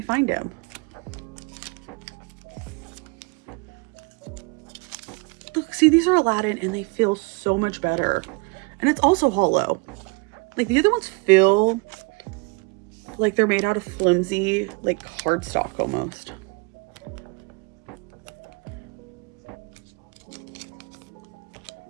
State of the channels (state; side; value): quieter; left; 30.1 dB